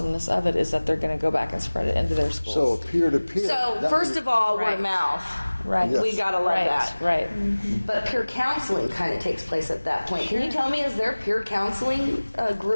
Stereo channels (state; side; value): inverted; both; correlation -1.00